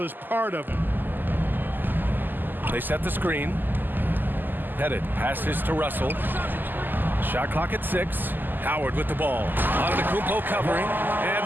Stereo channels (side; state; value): left; late; 0.089 ms